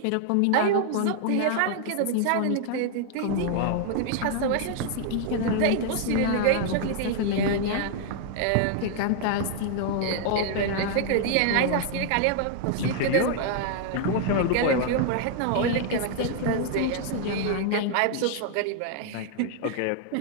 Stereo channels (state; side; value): different; both; correlation 0.00